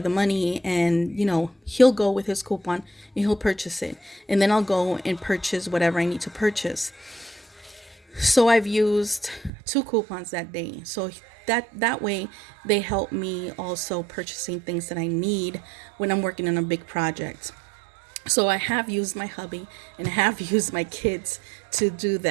money, and he'll go with his coupon and he'll purchase it. And then I'll go and purchase whatever I need to purchase. So I've used 2 coupons that day. So that way they help me also purchasing things that I need when I'm working on a big project. So I have used my hubby and I have used my kids to do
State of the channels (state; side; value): drops out; left; at 9.5 s